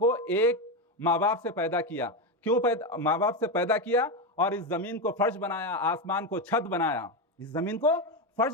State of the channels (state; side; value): normal; both; correlation 0.12